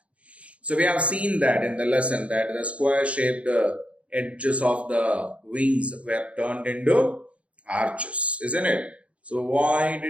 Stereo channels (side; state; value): left; late; 0.063 ms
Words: So we have seen that in the lesson that the square-shaped edges of the wings were turned into arches, isn't it? So why